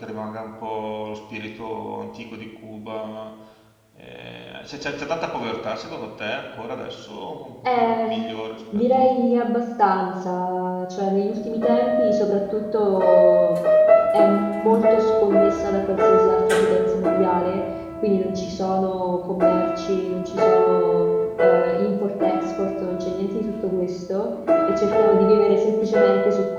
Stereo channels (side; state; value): both; identical; correlation 1.00